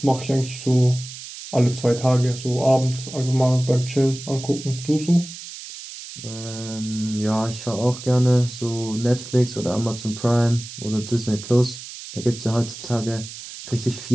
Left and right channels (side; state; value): right; noise; hiss, 13 dB below the sound